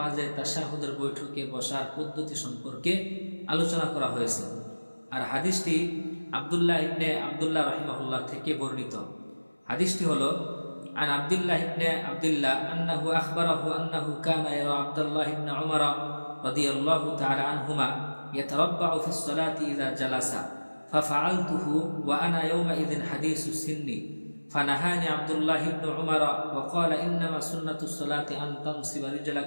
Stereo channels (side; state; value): both; inverted; correlation -1.00